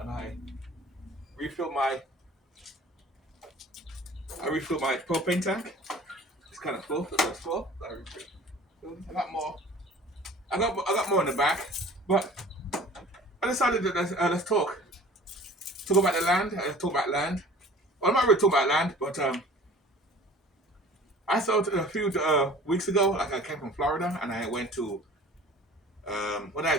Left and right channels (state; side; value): normal; both; correlation 0.46